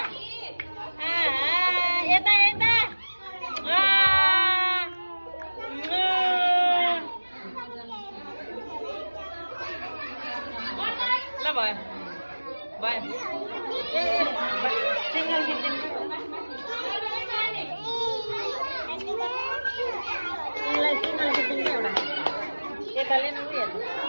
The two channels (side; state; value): both; inverted; correlation -1.00